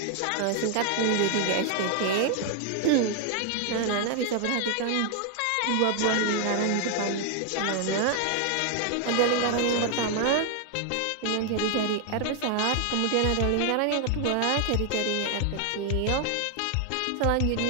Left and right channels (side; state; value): both; different; correlation 0.00